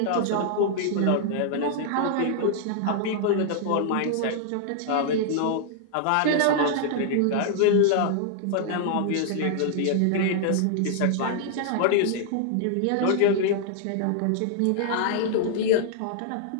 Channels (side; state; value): both; different; correlation -0.01